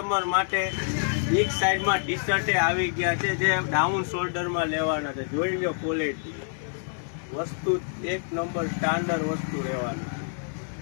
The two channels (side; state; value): right; silent; 60 dB below the other